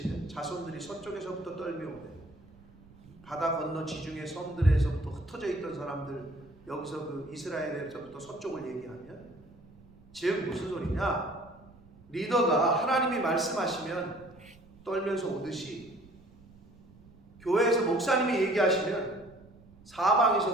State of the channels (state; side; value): noise; right; rumble, 24 dB below the sound